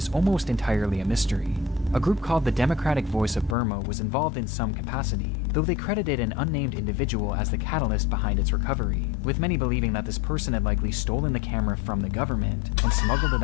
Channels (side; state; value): right; drops out; at 3.6 s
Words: almost entirely a mystery. A group called the Democratic Voice of Burma was involved in some capacity, though they credited an unnamed individual as the catalyst behind its recovery, with many believing that this person had likely stolen the camera from the government and smuggled it